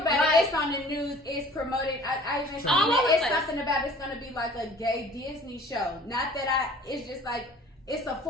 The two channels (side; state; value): both; normal; correlation 0.49